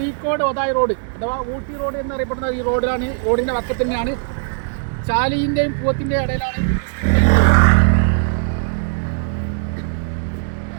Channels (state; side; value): silent; left; digital silence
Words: ഒതായി റോഡ് അഥവാ ഊട്ടി റോഡ് എന്നറിയപ്പെടുന്ന ഈ റോഡിലാണ്. റോഡിൻ്റെ പക്കത്ത് തന്നെയാണ്. ചാലിൻ്റെയും പൂവത്തിൻ്റെയും ഇടയിലാണ്.